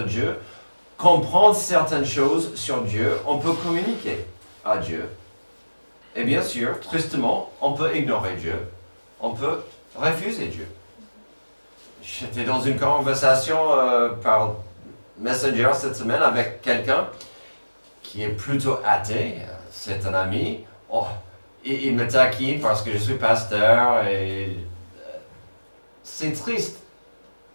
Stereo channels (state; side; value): inverted; both; correlation -1.00